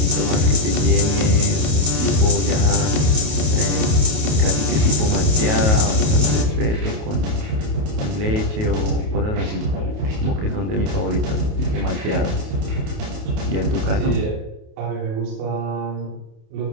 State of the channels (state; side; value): late; left; 28 ms